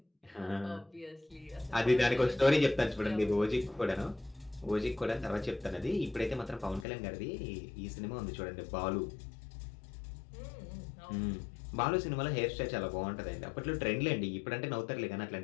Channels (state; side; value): drops out; right; at 6.9 s